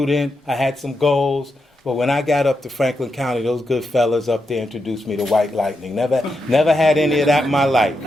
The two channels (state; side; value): normal; both; correlation 0.85